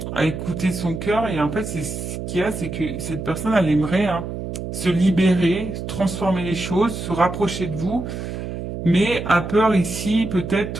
écouter son cœur. Et en fait, c'est ce qu'il y a, c'est que cette personne, elle aimerait hein, se libérer, transformer les choses, se rapprocher de vous, mais a peur ici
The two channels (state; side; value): noise; right; hum, 6 dB below the sound